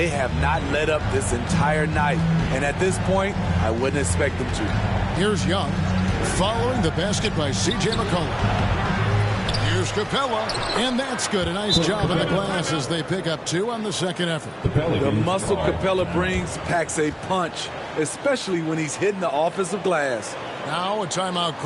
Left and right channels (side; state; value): both; identical; correlation 1.00